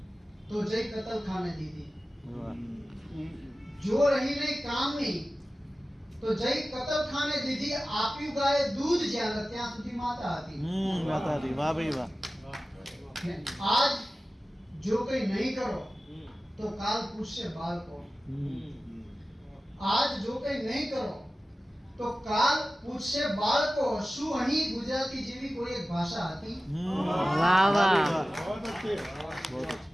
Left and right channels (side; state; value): both; normal; correlation 0.96